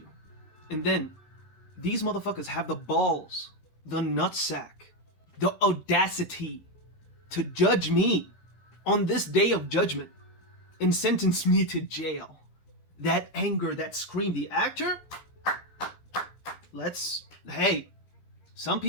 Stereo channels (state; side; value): late; right; 12 ms